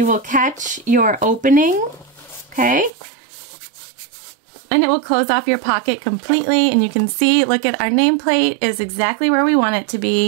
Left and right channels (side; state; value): left; drops out; at 2.9 s